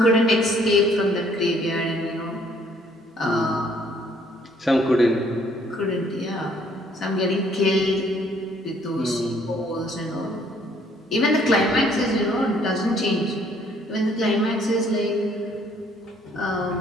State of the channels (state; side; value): normal; both; correlation 0.63